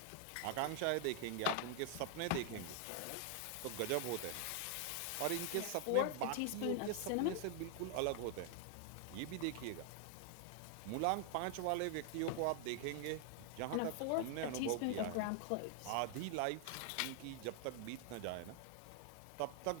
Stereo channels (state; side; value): different; both; correlation 0.00